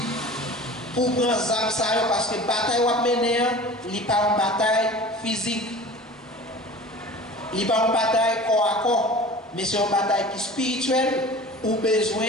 Pour prendre ça, parce que la bataille que vous menez, ce n'est pas une bataille physique. Ce n'est pas une bataille corps à corps, mais c'est une bataille qui est spirituelle. Ou besoin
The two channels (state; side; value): normal; both; correlation 0.40